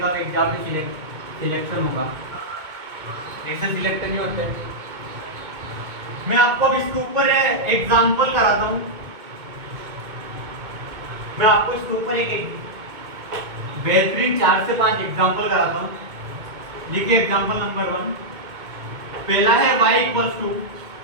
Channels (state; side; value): late; left; 2.2 ms